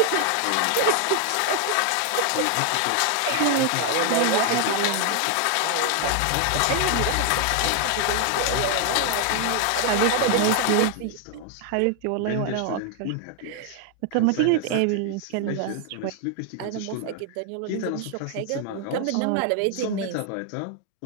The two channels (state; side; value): different; both; correlation 0.00